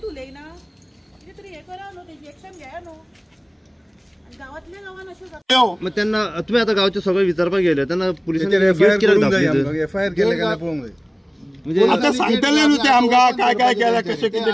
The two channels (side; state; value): both; identical; correlation 1.00